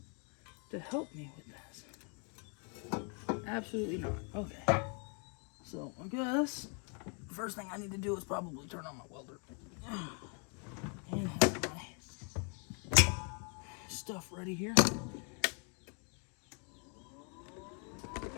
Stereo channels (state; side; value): quieter; right; 38.4 dB